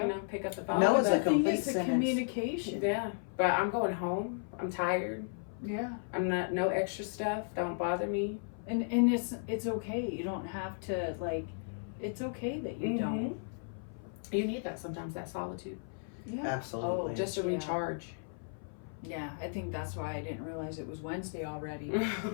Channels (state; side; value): silent; right; 55 dB below the other